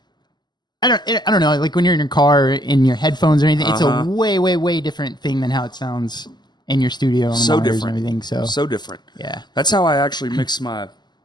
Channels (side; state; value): right; late; 0.21 ms